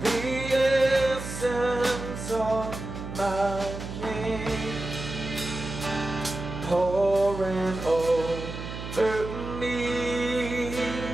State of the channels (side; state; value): right; noise; hum, 8 dB below the sound